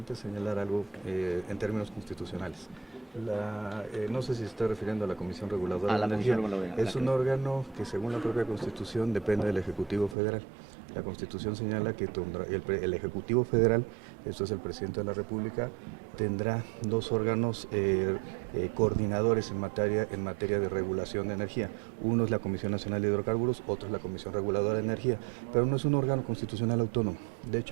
señalar algo en términos constitucionales. No sé si se está refiriendo a la Comisión Reguladora de Energía. Es un órgano que, según la propia Constitución, depende del Ejecutivo Federal. La Constitución señala que el Ejecutivo Federal, esto es el Presidente de la República, tendrá dos órganos coordinadores en materia de regulación de energía. Uno es la Comisión Nacional de Hidrocarburos, otro es la Comisión Reguladora de Energía, pero no es un órgano constitucional autónomo. De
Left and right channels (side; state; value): left; drops out; at 10.2 s